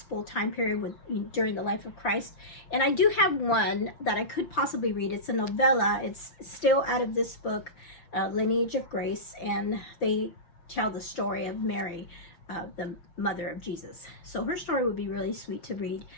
time period during the life of Christ. And I do have one that I could possibly read. It's a novella. It's still out of this book, Lineage of Grace, and they tell the story of Mary, the mother of Jesus. So her story would be really sweet to read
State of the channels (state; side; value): late; right; 5.9 ms